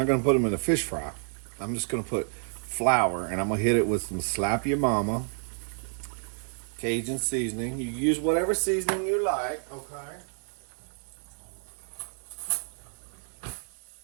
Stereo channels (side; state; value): left; silent; 58 dB below the other